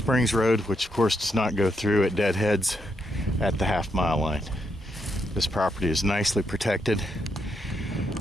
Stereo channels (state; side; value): normal; both; correlation 0.79